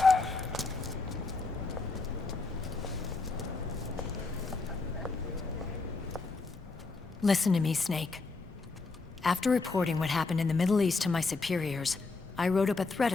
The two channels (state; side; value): quieter; right; 3.9 dB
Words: Listen to me, Snake. After reporting what happened in the Middle East to my superiors, I wrote up a threat